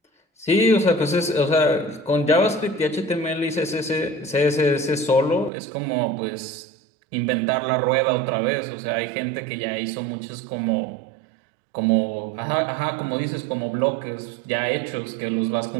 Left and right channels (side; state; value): left; drops out; at 5.5 s